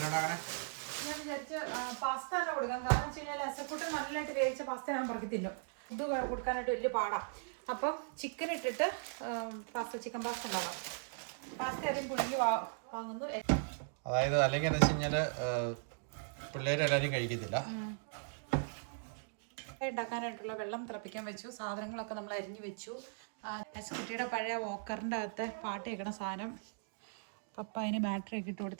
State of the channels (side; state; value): left; silent; digital silence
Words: ഞാൻ വിചാരിച്ച് പാസ്ത തന്നെ കൊടുക്കാം. കാരണം വെച്ച് കഴിഞ്ഞാൽ അസക്കൂട്ട് നല്ലതായിട്ട് വേവിച്ച പാസ്ത ഞാൻ പറക്കി തിന്നും. ഇത് കൊടുക്കാനായിട്ട് വലിയ പാടാണ്. അപ്പം ചിക്കൻ ഇട്ടിട്ട് ചിക്കൻ പാസ്ത ഉണ്ടാകാം. പാസ്ത ആദ്യം പുഴുങ്ങി വാങ്ങുന്നു. അതായത് അല്ലെങ്കിൽ എന്താ വെച്ച് കഴിഞ്ഞാൽ പിള്ളേരെല്ലാവരും കഴിക്കത്തില്ല. ഉണ്ടാക്കാനായിട്ടുള്ള വെള്ളം തിളപ്പിക്കാൻ വെച്ചു. സാധനങ്ങളൊക്കെ നമ്മൾ അരിഞ്ഞു വെച്ചു. കുട്ടിയുടെ പഴയ വോക്കറിൻ്റെ അകത്തെ പാട്ട് കേൾക്കണ സാധനം പപ്പ അതിന് ബാറ്ററി ഒക്കെ ഇട്ട്